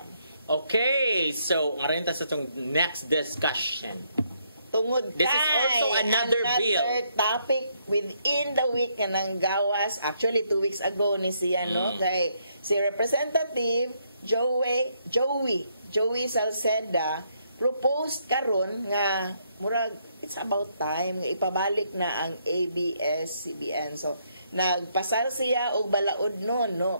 Okay, so nga rin ta sa itong next discussion. Tungod This is also another bill. Topic within the week nga nang gawas, actually 2 weeks ago ni siya, no? Kay si Representative Joey Salceda proposed karon nga murag it's about time nga ipabalik na ang ABS-CBN. So nagpasar siya og balaod noon,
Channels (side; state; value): both; inverted; correlation -0.73